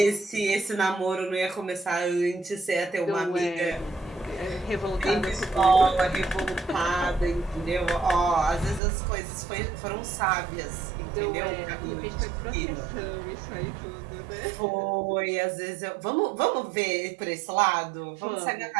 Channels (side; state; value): left; drops out; at 8.8 s